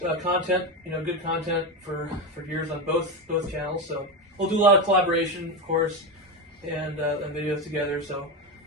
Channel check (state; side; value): normal; both; correlation 0.15